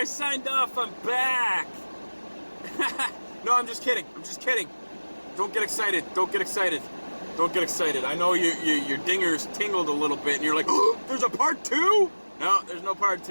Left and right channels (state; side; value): inverted; both; correlation -1.00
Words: signed off, I'm back! No, I'm just kidding. Don't get excited. I know your dingers tingled a little bit, and you're like, oh, there's a part 2? No, there's no part